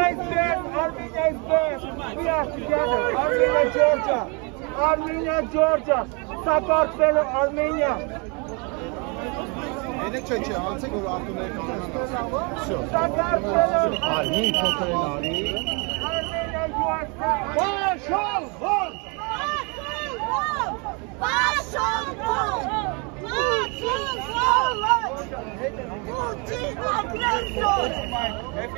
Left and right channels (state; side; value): quieter; left; 32.5 dB